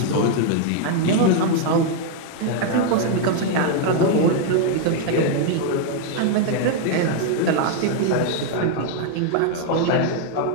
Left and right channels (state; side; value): different; both; correlation 0.00